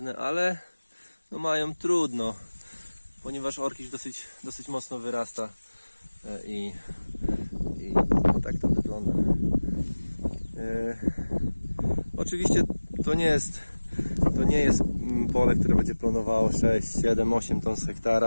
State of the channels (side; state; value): both; inverted; correlation -1.00